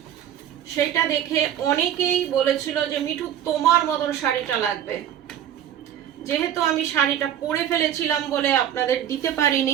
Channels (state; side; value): quieter; left; 10.4 dB